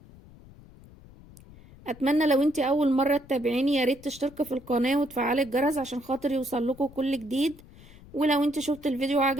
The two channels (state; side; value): noise; left; rumble, 21 dB below the sound